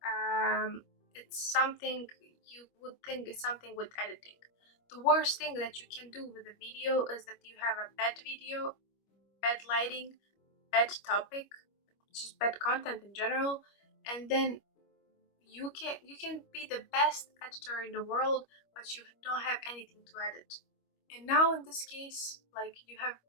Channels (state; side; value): late; right; 25 ms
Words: It's something you would think is something with editing. The worst thing that you can do with a video is that you have a bad video, bad lighting, bad topic, just bad content in general, and then you can be the best editor in the world, but you don't have anything to edit. And now in this case, like, you have